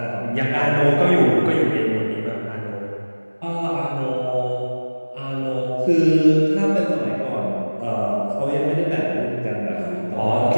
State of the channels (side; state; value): both; inverted; correlation -1.00